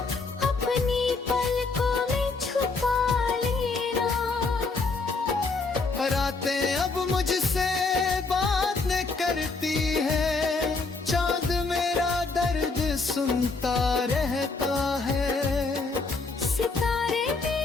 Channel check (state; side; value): quieter; right; 3.9 dB